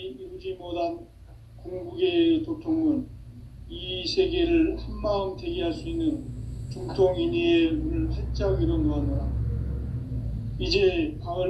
이루지 못한 궁극의 도통문, 이 세계를 한마음 되게 할 수 있는 중통인의의 문을 활짝 열어놓았노라. 이제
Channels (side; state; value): both; identical; correlation 1.00